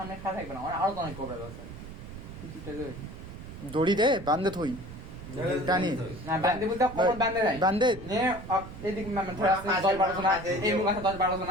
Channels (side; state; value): right; noise; rumble, 12 dB below the sound